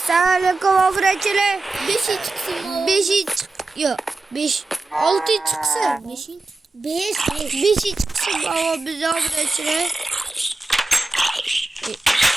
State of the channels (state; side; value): quieter; left; 3.3 dB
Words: Assalamualaikum obrachilar. 5 chiqsin. 5 yo'q. 5 6 chiqsin. 5 chiqsin. Baba biz obrachilar.